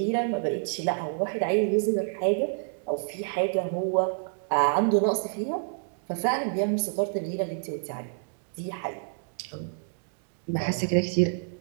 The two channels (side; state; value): left; silent; digital silence